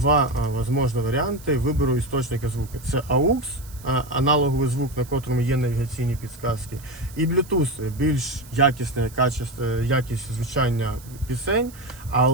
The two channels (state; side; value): noise; right; hiss, 21 dB below the sound